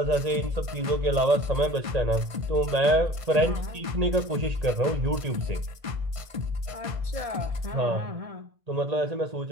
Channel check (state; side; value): late; left; 1.5 ms